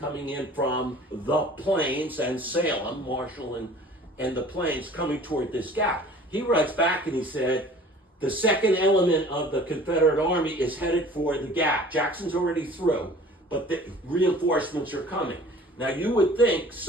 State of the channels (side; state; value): both; normal; correlation 0.48